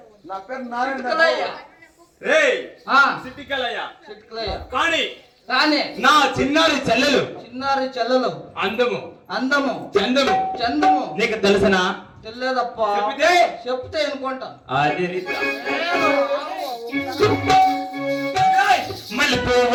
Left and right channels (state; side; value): identical; both; correlation 1.00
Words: నా పేరు నారాయణ. చిట్కలయ్య. రేయ్ ఆ, సిటికలయ్య. చిట్కలయ్య. కానీ కానీ నా చిన్నారి చెల్లెలు చిన్నారి చెల్లెలు అందము అందము చందము చందము నీకు తెలుసనా? తెలియదప్ప. చెబితే? చెప్తే అనుకుంటా. అది